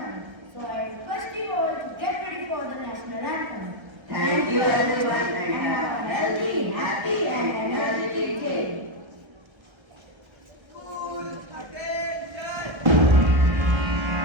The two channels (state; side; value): late; left; 1.3 ms